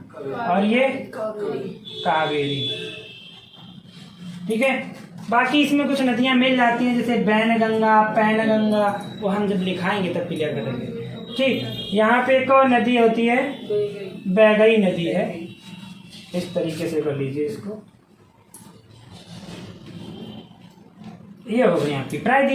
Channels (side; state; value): both; identical; correlation 1.00